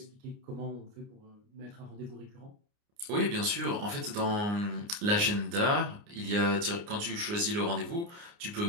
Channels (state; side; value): late; left; 29 ms